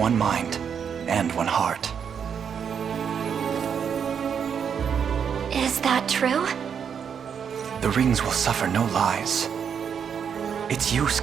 mind and one heart. Is that true? The rings will suffer no lies. It's you,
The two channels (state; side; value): quieter; left; 7.4 dB